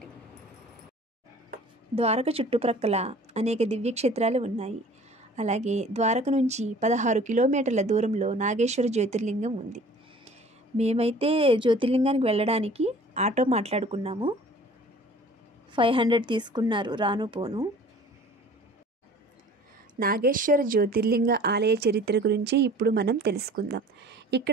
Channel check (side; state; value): both; normal; correlation 0.48